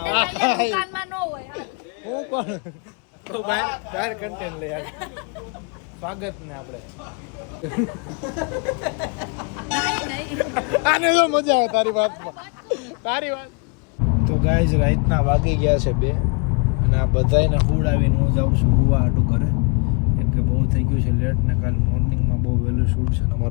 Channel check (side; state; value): right; quieter; 35.2 dB